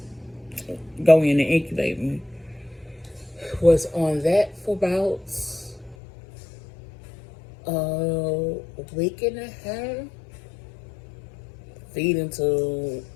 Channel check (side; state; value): right; drops out; at 6.0 s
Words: incubate me. Was on that for about a week and a half, feeding to